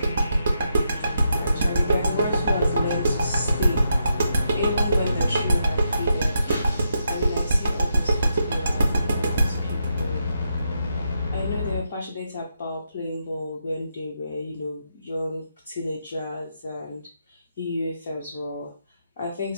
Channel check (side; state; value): both; inverted; correlation -0.82